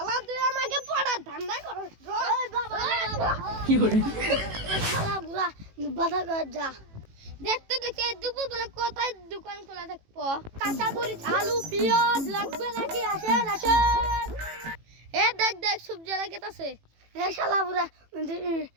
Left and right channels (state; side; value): late; left; 18 ms